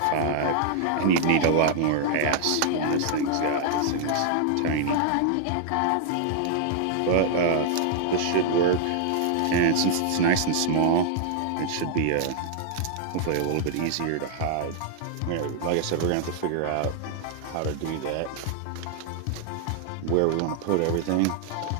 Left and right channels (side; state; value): both; different; correlation 0.00